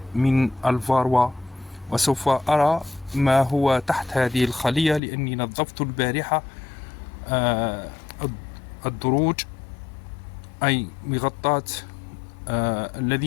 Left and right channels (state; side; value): drops out; right; at 5.0 s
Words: من الفاروا. وسوف أرى ما هو تحت هذه الخلية، لأني نظفت البارحة الدروج، أي مغطاة